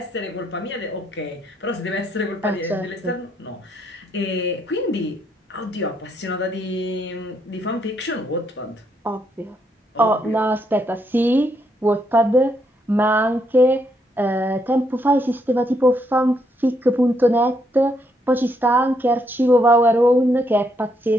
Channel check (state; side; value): normal; both; correlation 0.75